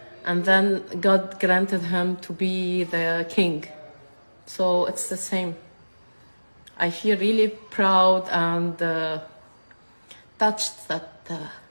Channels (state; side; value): inverted; both; correlation -1.00